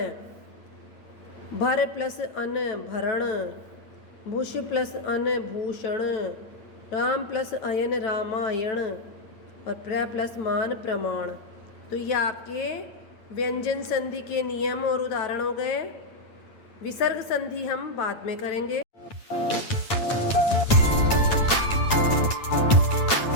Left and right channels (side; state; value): right; late; 8.9 ms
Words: भर प्लस अन भरण, भूष प्लस अन भूषण, राम प्लस अयन रामायण और प्र प्लस मान प्रमाण। तो ये आपके व्यंजन संधि के नियम और उदाहरण हो गए। विसर्ग संधि हम बाद में करेंगे।